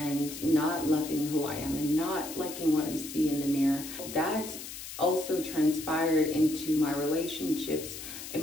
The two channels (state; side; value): noise; left; hiss, 10 dB below the sound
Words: not loving who I am and not liking what I see in the mirror. That also transpired into my relationships. In